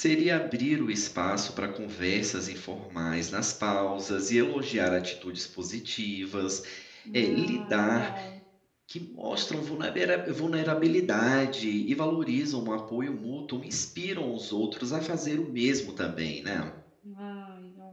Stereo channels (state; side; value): identical; both; correlation 1.00